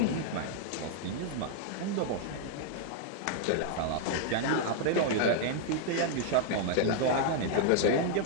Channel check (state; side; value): different; both; correlation 0.00